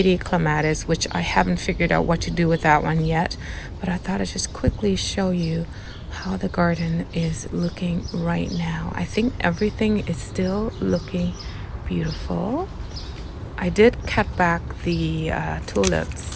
clematis, which I haven't figured out what to do with that one yet. But I thought I'd just quickly show you how the garden is looking right now. I think everything is still looking beautiful. I did cut back the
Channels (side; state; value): both; identical; correlation 1.00